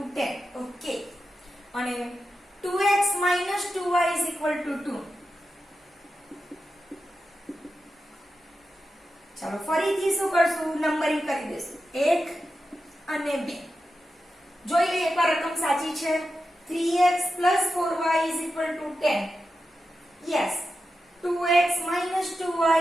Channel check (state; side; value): normal; both; correlation 0.90